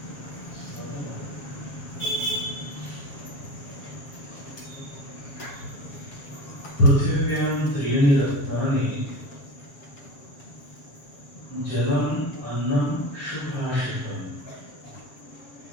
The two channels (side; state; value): right; late; 7.0 ms